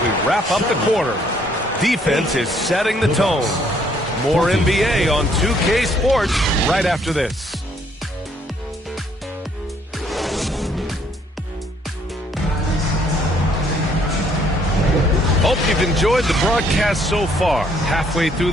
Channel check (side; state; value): both; normal; correlation 0.66